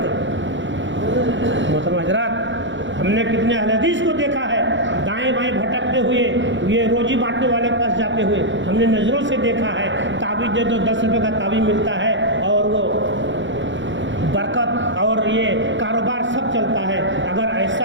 मोहतरम हज़रात, हमने कितने अहले हदीस को देखा है दाएं बाएं भटकते हुए, ये रोजी बांटने वाले के पास जाते हुए, हमने नज़रों से देखा है। ताबीज़ दे दो, 10 रुपये का ताबीज़ मिलता है और वो बरकत और ये कारोबार सब चलता है। अगर ऐसा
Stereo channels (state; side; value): late; left; 0.54 ms